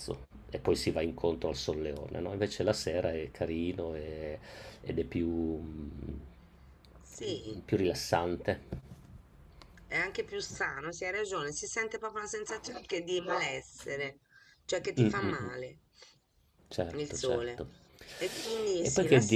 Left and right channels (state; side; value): identical; both; correlation 1.00